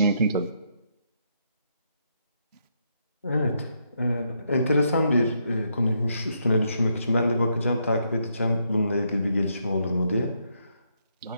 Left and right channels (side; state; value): both; inverted; correlation -0.77